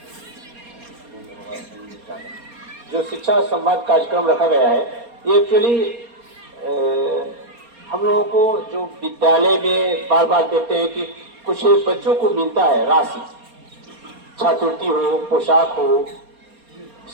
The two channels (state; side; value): late; left; 4.3 ms